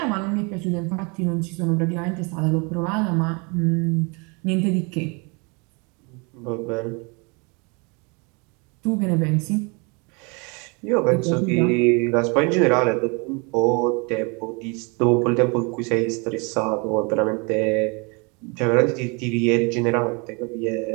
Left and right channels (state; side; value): quieter; left; 31.2 dB